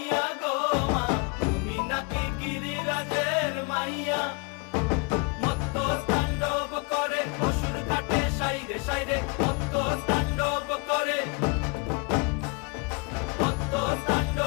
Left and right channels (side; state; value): right; quieter; 30.7 dB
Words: গো মা, তুমি নাকি গিরিরাজের মাইয়া। মত্ত তাণ্ডব করে অসুর কাটে সাইরে সাইরে, মত্ত তাণ্ডব করে, মত্ত